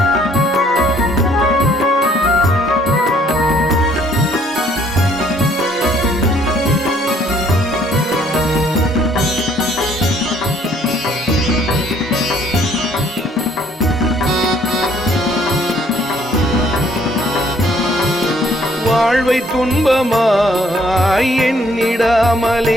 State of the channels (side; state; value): both; normal; correlation 0.63